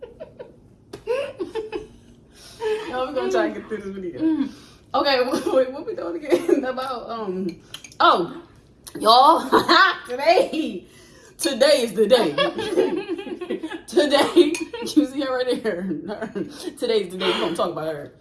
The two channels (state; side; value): identical; both; correlation 1.00